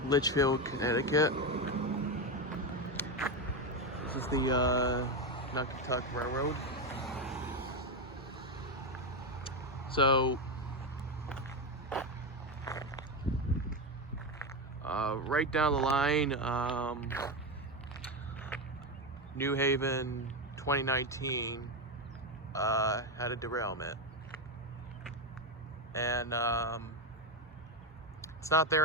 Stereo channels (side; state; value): both; normal; correlation 0.11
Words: Litchfield, Connecticut. This is the Naugatuck Railroad. So, right down the line, New Haven 2019 had a derailment. And it's not